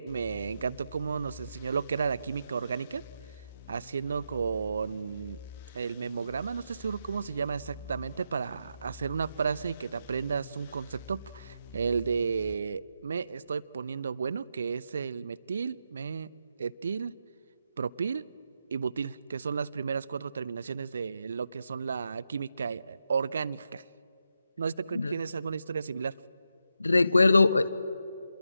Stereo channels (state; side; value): inverted; both; correlation -0.86